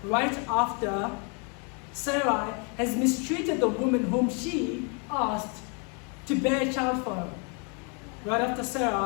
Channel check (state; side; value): quieter; right; 36.6 dB